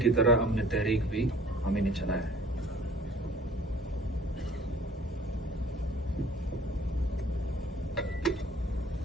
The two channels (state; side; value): normal; both; correlation 0.52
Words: तरह हमने तहरीक भी हमें नहीं चलाया है।